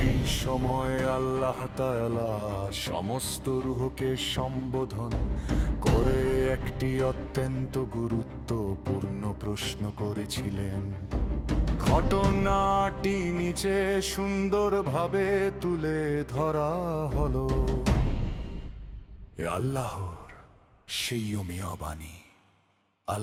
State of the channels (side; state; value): both; identical; correlation 1.00